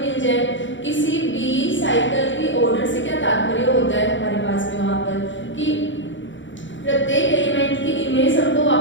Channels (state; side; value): late; right; 0.55 ms